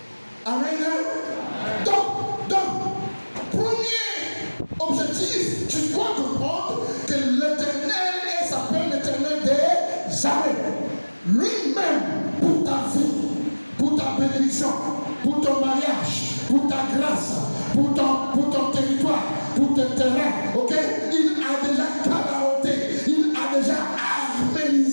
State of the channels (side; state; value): both; inverted; correlation -1.00